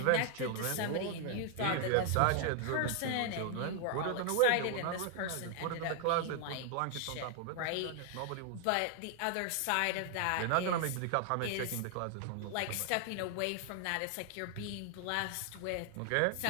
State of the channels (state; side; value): different; both; correlation 0.00